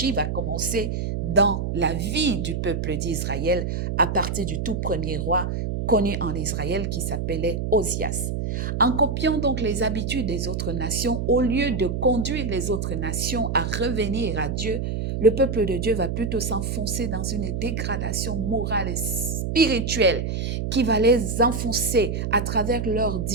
va commencer dans la vie du peuple d'Israël à partir du tout premier roi connu en Israël qui s'appelait Osias. En copiant donc les habitudes des autres nations, au lieu de conduire les autres nations à revenir à Dieu, le peuple de Dieu va plutôt s'enfoncer dans une dégradation morale et spirituelle qui va les enfoncer à travers leurs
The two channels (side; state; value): right; noise; hum, 2 dB below the sound